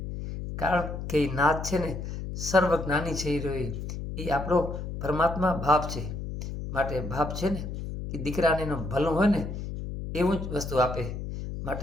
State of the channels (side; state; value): left; noise; hum, 6 dB below the sound